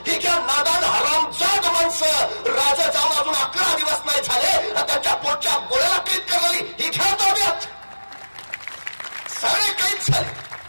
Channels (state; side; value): inverted; both; correlation -1.00